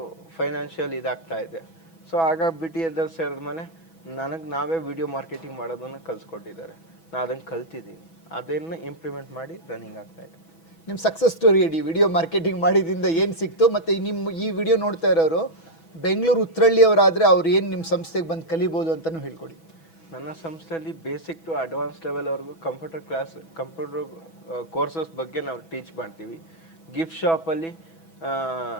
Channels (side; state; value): right; late; 6.1 ms